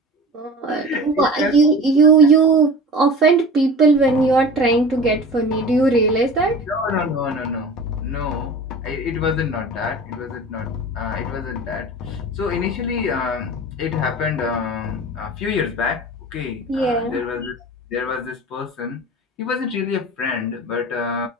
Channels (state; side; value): normal; both; correlation 0.36